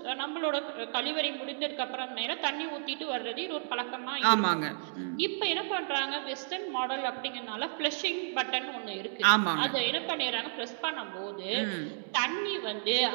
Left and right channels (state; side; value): silent; left; digital silence